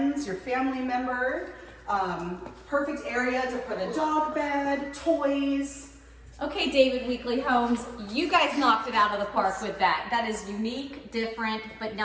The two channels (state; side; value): identical; both; correlation 1.00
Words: your family member. Perfect area to put a dog bed, toys. Okay, David Weekly Homes, you guys knocked it out of the park with that. That is unique, different, but